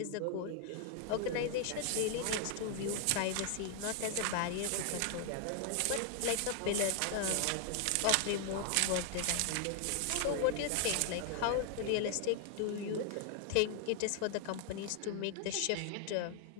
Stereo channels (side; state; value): both; different; correlation 0.00